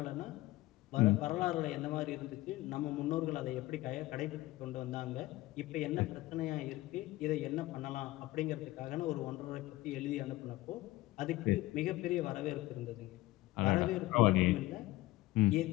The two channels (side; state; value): right; quieter; 18.3 dB